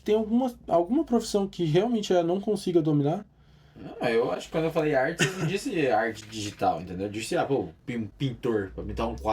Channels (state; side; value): identical; both; correlation 1.00